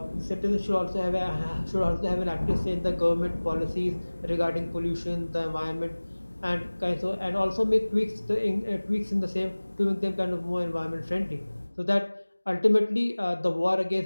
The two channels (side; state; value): both; inverted; correlation -1.00